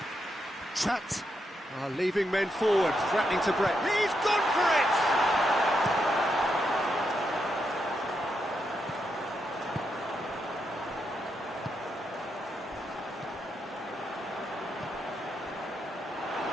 Trapped. Leaving men forward, threatening to break. He's gone for it!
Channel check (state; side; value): normal; both; correlation 0.82